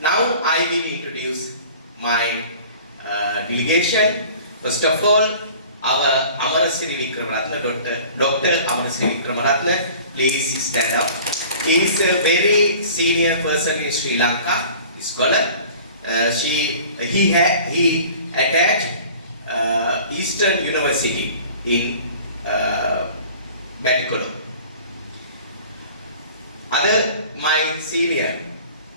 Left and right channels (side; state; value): both; inverted; correlation -0.45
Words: I will introduce my delegation. First of all, our Siri Dr. Siri please stand up. He is a very senior person in Sri Lanka, scholar. He attached Eastern University in Batikolom. Other my senior,